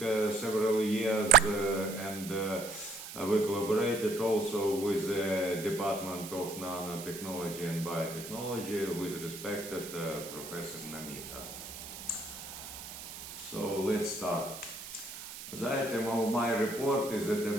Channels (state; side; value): noise; right; hiss, 11 dB below the sound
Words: several years and we collaborated also with the Department of Nanotechnology and Biotechnology with respected Professor Namita. So let's start. The item of my report is a